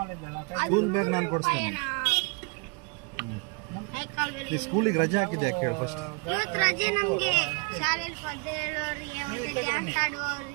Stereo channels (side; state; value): left; quieter; 33.1 dB